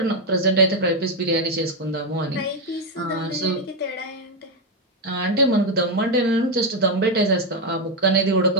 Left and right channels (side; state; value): both; normal; correlation 0.04